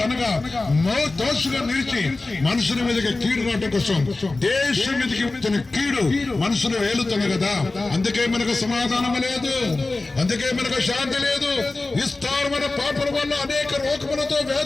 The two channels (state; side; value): quieter; right; 3.2 dB